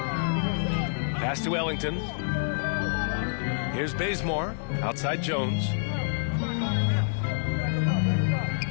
Pass to Ellington. Here's Bazemore. Outside Jones.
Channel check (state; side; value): silent; right; digital silence